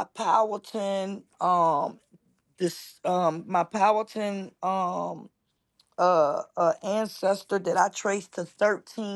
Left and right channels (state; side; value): identical; both; correlation 1.00